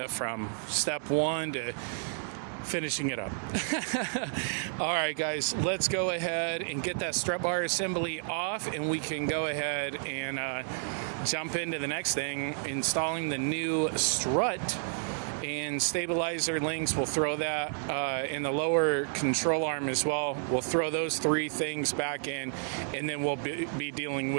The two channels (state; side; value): silent; left; digital silence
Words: from step one to finishing it up. All right, guys, let's go ahead and get that strut bar assembly off, and we can go ahead and jump into the next thing, installing the new strut and stabilizer links. We'll throw that in the lower control arm as well. We'll throw those three things back in, and then we'll be dealing